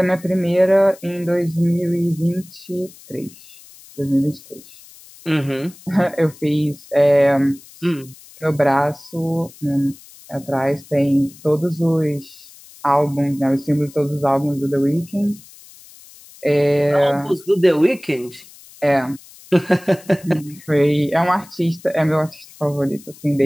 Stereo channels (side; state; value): left; noise; hiss, 22 dB below the sound